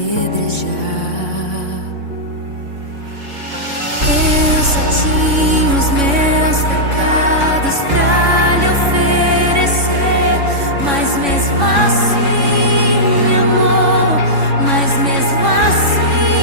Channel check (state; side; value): late; left; 3.6 ms